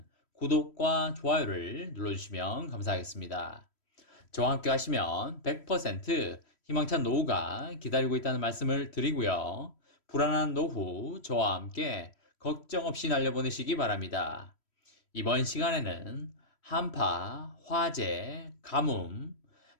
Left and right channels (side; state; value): right; late; 3.1 ms